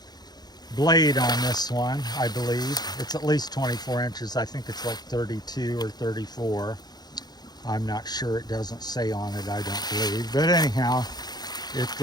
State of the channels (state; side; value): late; right; 0.20 ms